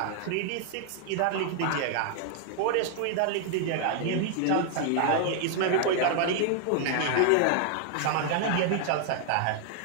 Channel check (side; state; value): both; different; correlation 0.00